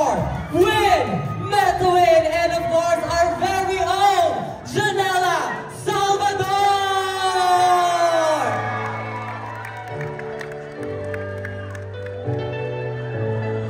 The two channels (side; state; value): both; identical; correlation 1.00